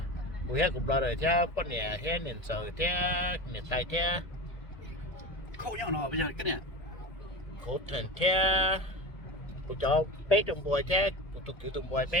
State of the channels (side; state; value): right; late; 1.8 ms